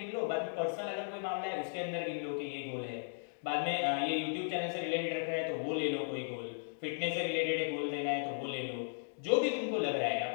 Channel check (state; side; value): silent; right; digital silence